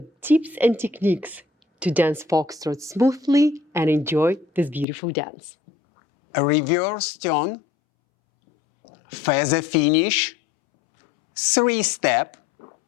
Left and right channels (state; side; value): drops out; right; at 4.9 s